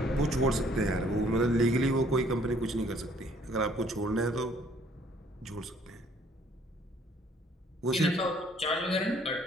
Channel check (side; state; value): both; normal; correlation 0.61